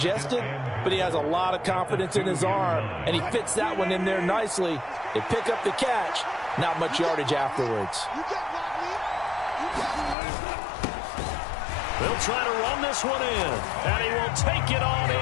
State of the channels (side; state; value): right; drops out; at 10.2 s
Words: but he has a lot of confidence in his arm, and he fits that one in there nicely. They pick up the catch, not much yardage afterwards. They'll try to run this one in, and he will take it on